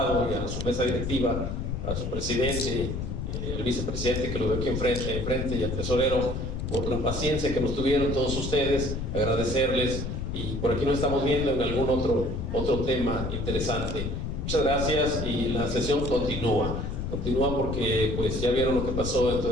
y a su mesa directiva, a su presidente, el vicepresidente que lo veo aquí enfrente y al tesorero, por la paciencia que nos tuvieron todos ustedes, agradecerles, y por aquí nos estamos viendo en algún otro tema interesante. Muchas gracias y la sesión continúa porque pues ya vieron lo que pasó toda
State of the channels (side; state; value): left; noise; rumble, 3 dB below the sound